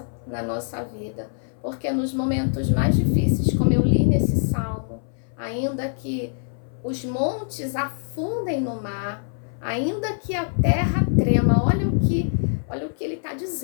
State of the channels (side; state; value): right; silent; 59 dB below the other